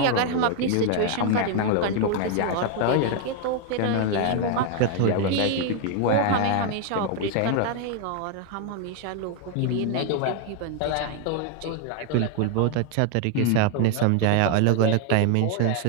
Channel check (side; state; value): both; different; correlation 0.00